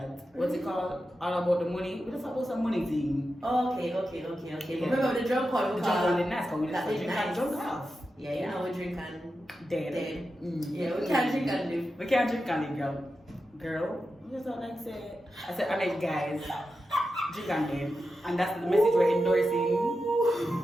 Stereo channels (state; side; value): normal; both; correlation 0.90